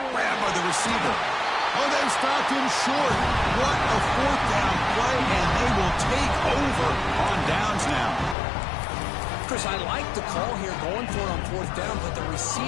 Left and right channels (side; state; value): right; drops out; at 8.3 s